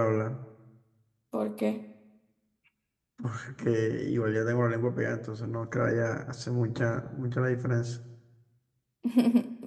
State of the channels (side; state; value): both; identical; correlation 1.00